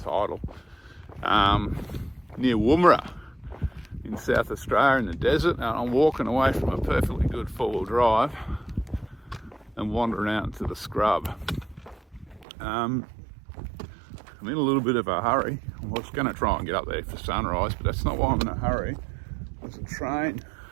Near Woomera in South Australia in the desert, and I'm walking away from a perfectly good four-wheel drive and wandering out into the scrub. I'm in a little bit of a hurry. I was going to try and get up there for sunrise, but that's not why I'm in a hurry. There's a train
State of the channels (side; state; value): left; drops out; at 12.5 s